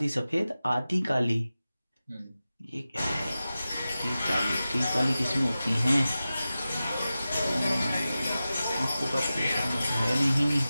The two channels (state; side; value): inverted; both; correlation -0.94